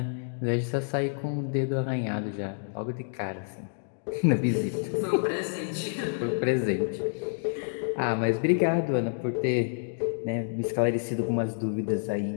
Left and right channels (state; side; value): silent; right; digital silence